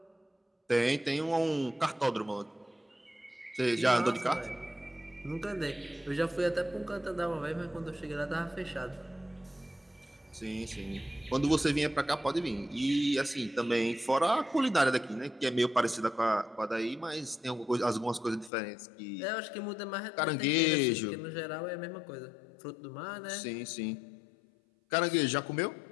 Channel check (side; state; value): right; drops out; at 18.5 s